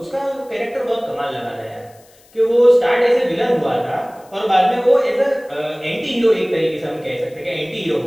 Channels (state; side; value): noise; left; hiss, 29 dB below the sound